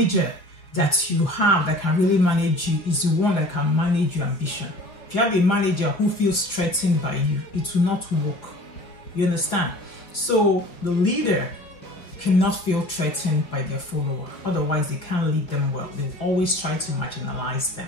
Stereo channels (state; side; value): late; right; 5.2 ms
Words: that you have that can really manage you is the one that can manage your ambition. If you have a manager who feels threatened by you, it will not work. You understand? So the leader cannot feel threatened by their follower. Otherwise, they can't lead them well. They'll always try to marginalize them.